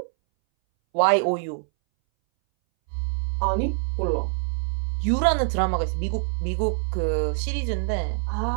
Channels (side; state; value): left; silent; 61 dB below the other